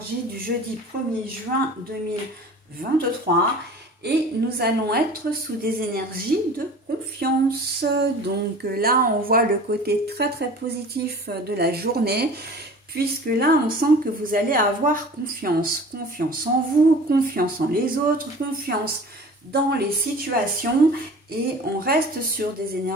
du jeudi 1er juin 2023 et nous allons être sous des énergies de confiance. Donc là, on voit le côté très positif de la journée puisque là, on sent que vous allez avoir confiance. Confiance en vous, confiance en les autres, confiance dans les situations. Et on reste sur des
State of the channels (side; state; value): both; normal; correlation 0.42